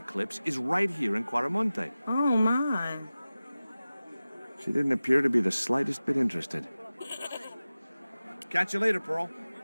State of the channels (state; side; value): inverted; both; correlation -0.96